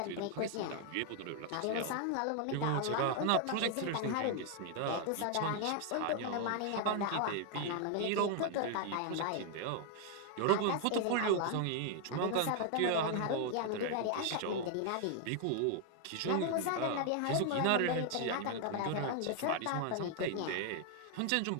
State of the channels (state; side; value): different; both; correlation 0.00